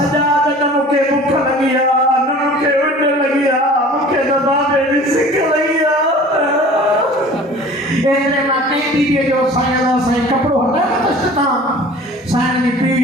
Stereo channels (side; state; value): both; normal; correlation 0.44